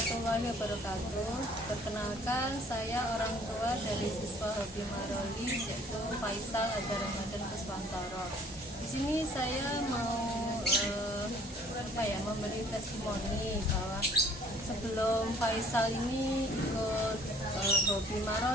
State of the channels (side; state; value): both; normal; correlation 0.56